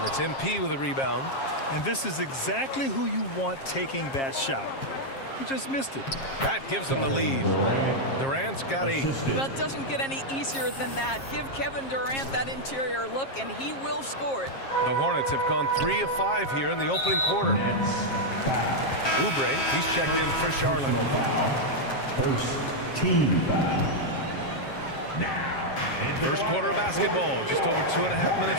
it's MP with a rebound. And this is exactly who you want taking that shot. He just missed it. That gives him the lead. Durant's got 8. Well, it doesn't get any easier than that. Give Kevin Durant that interior look, and he will score it. The Hornets have gone 3 of 5 here in the opening quarter. Oubre, he's checked in for Charlotte. First team foul. First quarter of basketball. Just over 2.5 minutes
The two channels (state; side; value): late; right; 7.4 ms